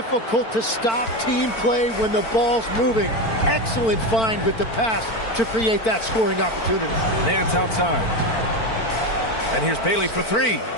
to stop team play when the ball's moving. Excellent find with the pass to create that scoring opportunity. Nance outside. And here's Bailey for 3.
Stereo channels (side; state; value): right; late; 4.5 ms